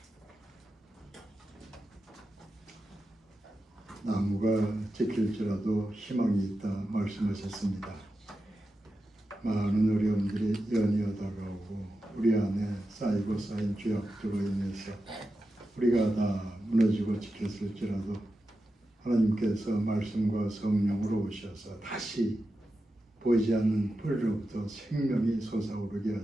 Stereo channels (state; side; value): normal; both; correlation 0.91